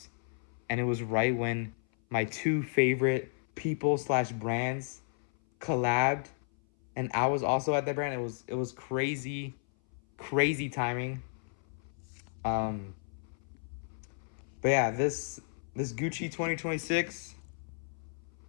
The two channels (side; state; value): right; silent; 56 dB below the other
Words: And it was right when my two favorite people slash brands collabed and I was also at that brand. It was crazy, crazy timing. Um, but yeah, this Gucci 2026